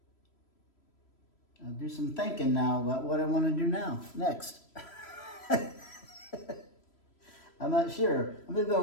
I'll do some thinking now about what I want to do next. I'm not sure. I'm just gonna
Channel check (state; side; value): late; right; 3.0 ms